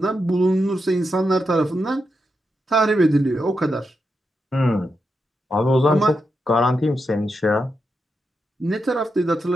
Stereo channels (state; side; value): normal; both; correlation 0.86